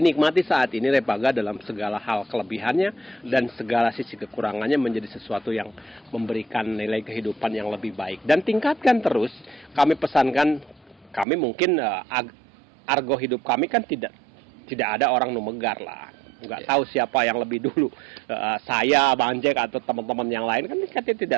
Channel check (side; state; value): left; drops out; at 11.2 s